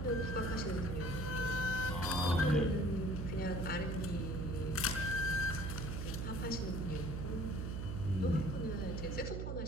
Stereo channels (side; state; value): right; noise; hum, 3 dB below the sound